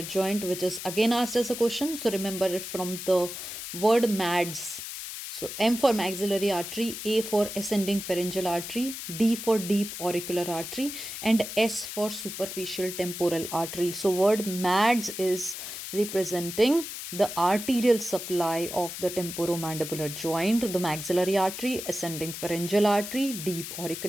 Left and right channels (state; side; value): noise; left; hiss, 8 dB below the sound